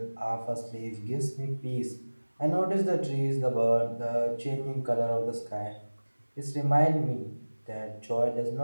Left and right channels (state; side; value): inverted; both; correlation -1.00